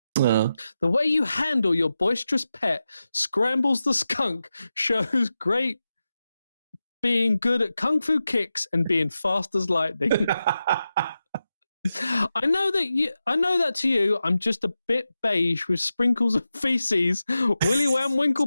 The way you handle your boisterous pet, Scrambles the skunk, shows great being good at kung fu kicks and being fast as lightning. I know that to you, I'm just a bit beige with sprinkles of feces, willy wham,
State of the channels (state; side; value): inverted; both; correlation -0.91